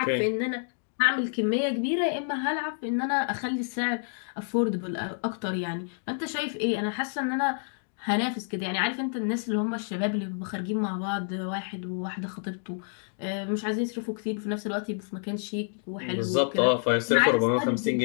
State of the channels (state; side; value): silent; right; digital silence